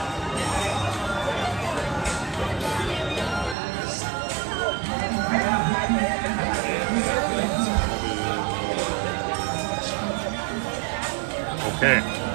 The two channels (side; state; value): left; drops out; at 3.6 s